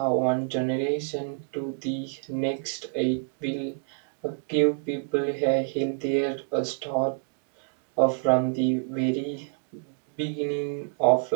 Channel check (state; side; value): silent; left; digital silence